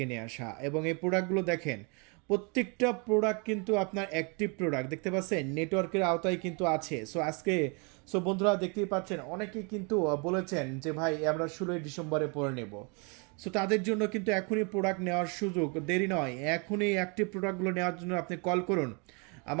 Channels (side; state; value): left; quieter; 33.5 dB